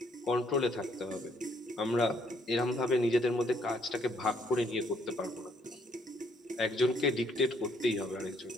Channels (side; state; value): both; normal; correlation 0.69